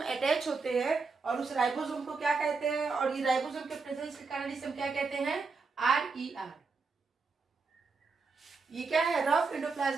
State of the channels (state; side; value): quieter; left; 4.5 dB